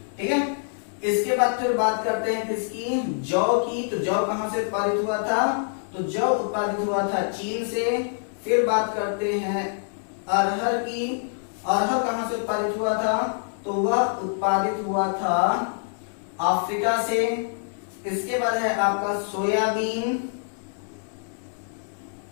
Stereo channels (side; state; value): right; silent; digital silence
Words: ठीक है, इसके बाद फिर बात करते हैं किसकी? जौ की। तो जौ कहां से उत्पादित हुआ था? तो जौ उत्पादित हुआ था चीन से। फिर बात करते हैं अरहर की। अरहर कहां से उत्पादित हुआ था? तो वह उत्पादित हुआ था अफ्रीका से। इसके बाद है आपका सोयाबीन,